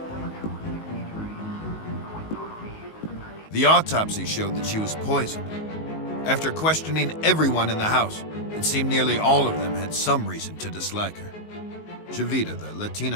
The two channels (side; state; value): right; late; 19 ms